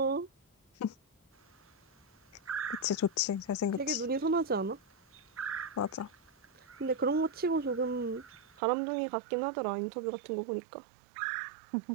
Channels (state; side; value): drops out; left; at 8.6 s